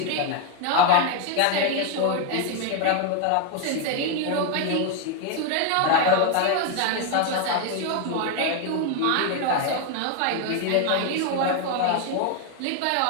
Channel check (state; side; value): different; both; correlation 0.01